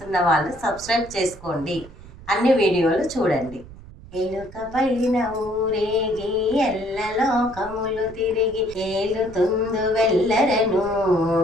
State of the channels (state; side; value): noise; right; rumble, 18 dB below the sound